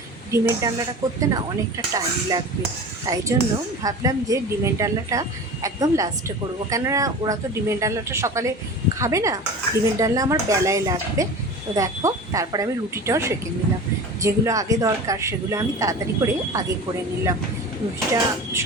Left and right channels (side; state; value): both; normal; correlation 0.34